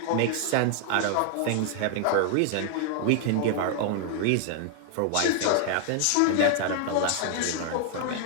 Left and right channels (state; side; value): different; both; correlation 0.00